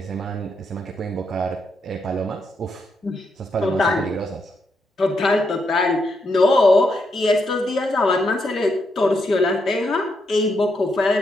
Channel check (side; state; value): both; normal; correlation 0.80